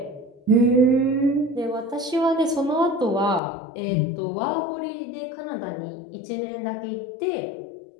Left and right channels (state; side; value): drops out; right; at 3.4 s